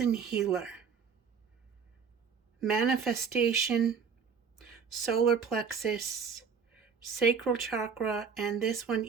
healer. Manifestation, solar plexus, sacral chakra, and this one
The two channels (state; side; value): quieter; left; 6.1 dB